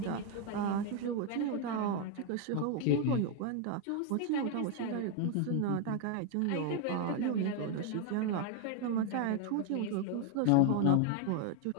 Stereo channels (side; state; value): both; different; correlation 0.01